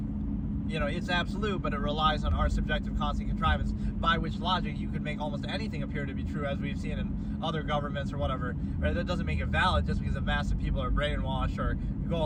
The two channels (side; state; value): both; identical; correlation 1.00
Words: it's absolute, but it relies on our subjective constant contrivance, by which logic you could make almost anything appear to be true, as we've seen in other governments or whatever. Right? That doesn't make it valid just because a mass of people are brainwashed or go